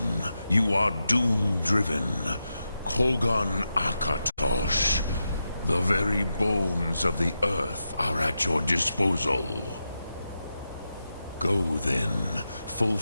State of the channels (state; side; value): inverted; both; correlation -0.88